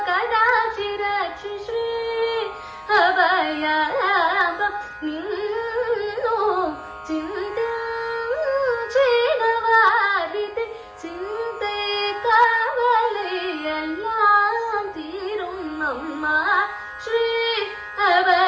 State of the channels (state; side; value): identical; both; correlation 1.00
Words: ಕದಾಕ್ಷಿ ರಕ್ಷಿ ಶ್ರೀ ಅಭಯಾಭ ನೀನು ಚಿಂತೆನವಾರಿತೆ ಚಿಂತೆ ಕಾವಲೆಯೆಲ್ಲ ತೀರುಮ್ಮಮ್ಮ ಶ್ರೀ